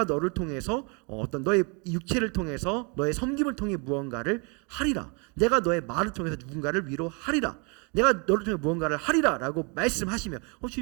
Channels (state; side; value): quieter; left; 33.6 dB